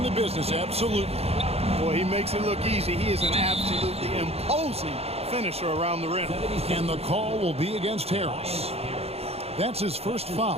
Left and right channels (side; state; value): left; late; 0.29 ms